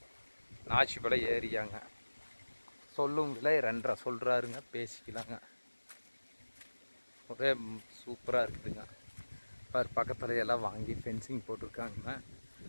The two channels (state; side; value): inverted; both; correlation -1.00